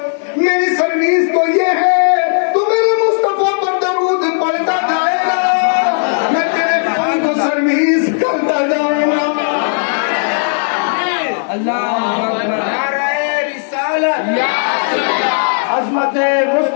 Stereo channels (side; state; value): right; silent; digital silence